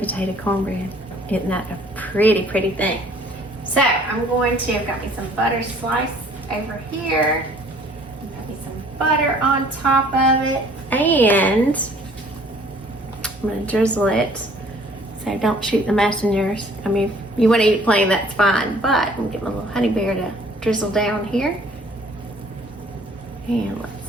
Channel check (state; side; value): normal; both; correlation 0.56